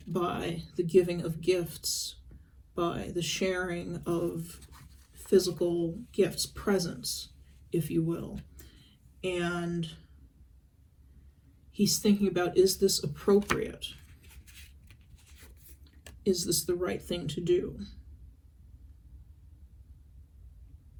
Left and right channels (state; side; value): identical; both; correlation 1.00